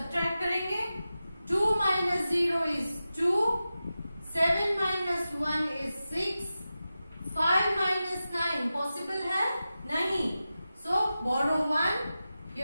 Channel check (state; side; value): inverted; both; correlation -0.93